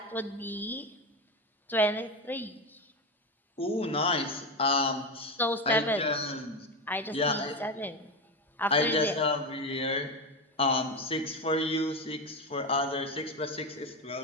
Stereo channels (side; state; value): both; normal; correlation 0.16